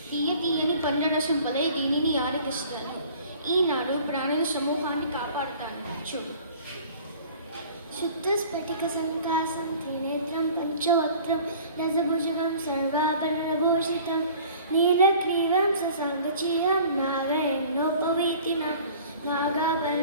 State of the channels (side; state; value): both; inverted; correlation -0.48